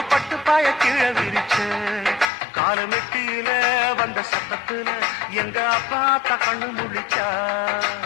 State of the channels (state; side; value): drops out; right; at 2.3 s